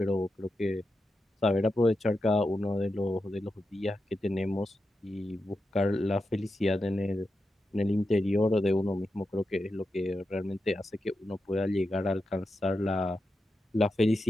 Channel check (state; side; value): normal; both; correlation 0.89